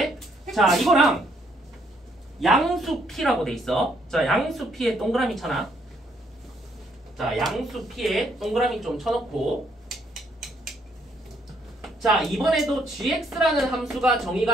자, 이거랑 양수 p라고 돼 있어. 자, 양수 p에 동그라미 쳐놔. 자, 양수 p에 동그라미 좀 쳐놓고 자, 이번에도 gx라는 함수가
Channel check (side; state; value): both; normal; correlation 0.70